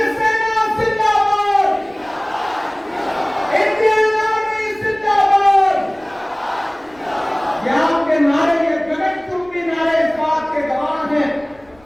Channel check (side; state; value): left; noise; rumble, 29 dB below the sound